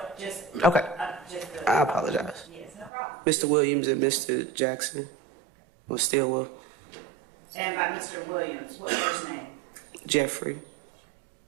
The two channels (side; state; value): left; drops out; at 2.9 s